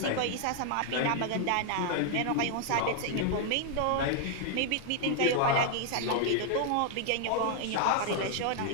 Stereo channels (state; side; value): different; both; correlation 0.00